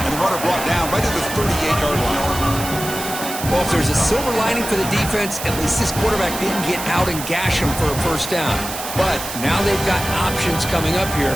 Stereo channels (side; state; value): right; noise; hiss, 8 dB below the sound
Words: the runner brought down right at the 38-yard line. Well, if there's a silver lining for the defense, at least this quarterback didn't get out and gash him for a first down. But now they've got options coming up here.